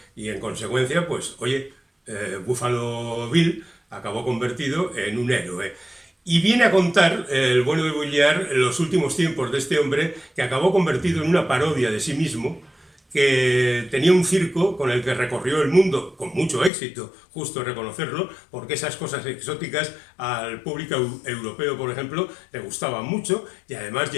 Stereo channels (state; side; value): drops out; right; at 16.7 s